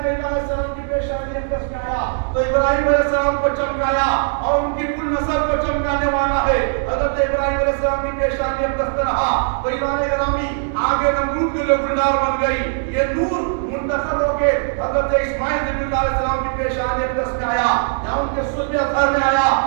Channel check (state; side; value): silent; left; digital silence